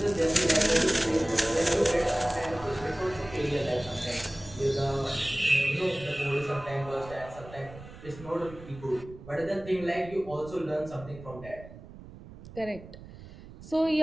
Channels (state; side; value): noise; right; rumble, 16 dB below the sound